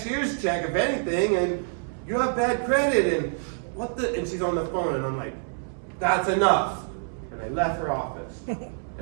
check, if anything, and you have bad credit, and and she's on the phone, and I'm like, that's enough. And I left her office.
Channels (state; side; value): silent; left; digital silence